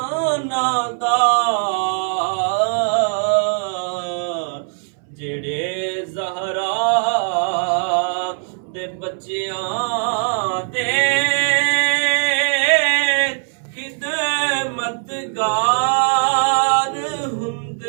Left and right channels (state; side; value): silent; left; 63 dB below the other